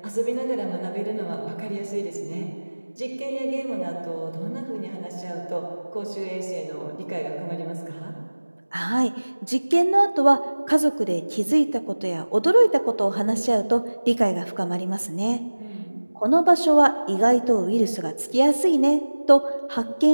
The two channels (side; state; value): both; inverted; correlation -1.00